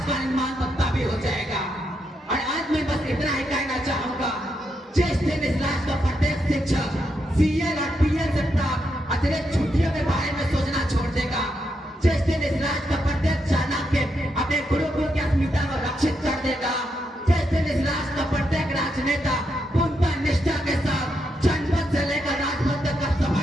का निर्माण तो तभी हो जाएगा। और आज मैं बस इतना ही कहना चाहूंगा, जिस दिन इस राष्ट्र का प्रत्येक शिक्षक CL और PL से प्राप्त अतिरिक्त छुट्टियों के बारे में सोचना छोड़ देगा, जिस दिन इस राष्ट्र का प्रत्येक चाणक्य अपने गुरुकुल की अस्मिता को रक्षित कर देगा, जिस दिन इस राष्ट्र का प्रत्येक राजनेता पूर्णतः निष्ठा के साथ जनपद से लेकर राजपद तक का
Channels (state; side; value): normal; both; correlation 0.81